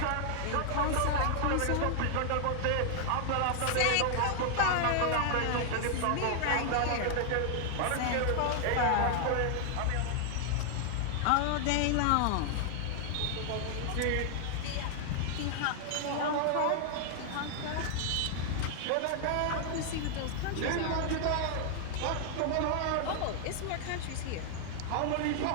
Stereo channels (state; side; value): different; both; correlation 0.00